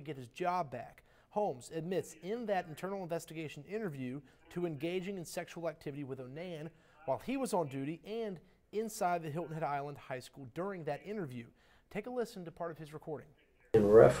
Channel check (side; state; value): both; identical; correlation 1.00